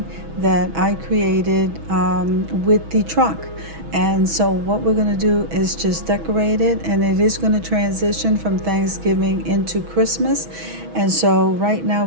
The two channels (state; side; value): late; left; 6.1 ms